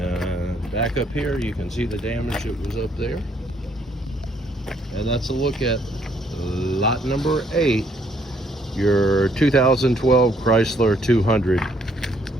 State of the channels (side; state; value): both; normal; correlation 0.68